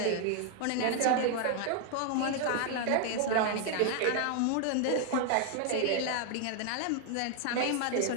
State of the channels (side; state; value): both; different; correlation 0.00